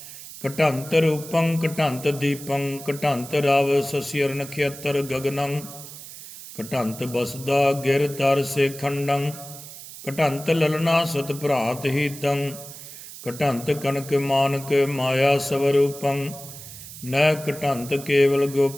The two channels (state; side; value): noise; right; hiss, 14 dB below the sound